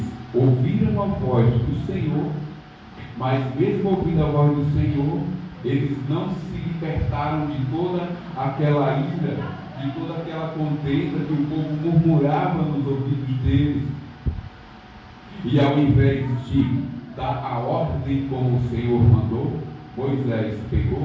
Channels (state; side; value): identical; both; correlation 1.00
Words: ouviram a voz do Senhor, mas mesmo ouvindo a voz do Senhor, eles não se libertaram de toda aquela ira, de toda aquela contenda que o povo murmurava nos ouvidos deles. E ao invés de dar a ordem como o Senhor mandou, Moisés